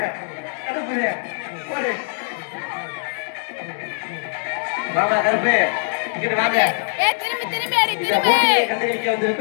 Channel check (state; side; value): silent; right; digital silence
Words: கருப்புடியா போடு மாமா கருப்பு இங்க வாங்க இந்த போட்டியை கண்டுபிடிக்க